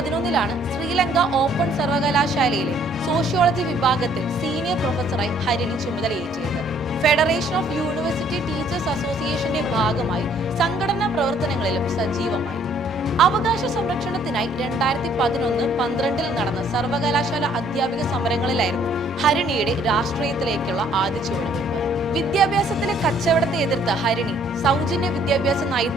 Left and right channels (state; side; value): normal; both; correlation 0.62